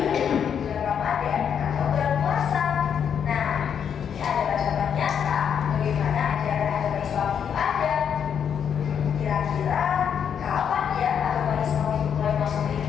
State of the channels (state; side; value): quieter; right; 7.9 dB